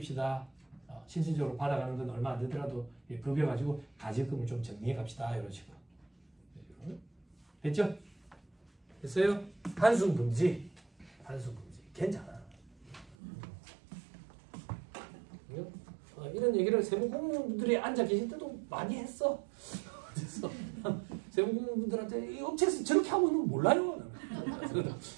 실질적으로 받아가는 건 얼마 안 되더라도 급여 가지고 가지급금을 좀 정리해 갑시다. 이런 식으로. 됐죠? 됐어요? 한숨 금지. 괜찮아. 이런 얘기를 세무 공무원분들이 앉아 계실 때도 많이 했어. 그래서 세무 공무원분들한테 이 업체에서 저렇게 하고 있는 거 몰라요.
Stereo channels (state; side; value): drops out; left; at 13.2 s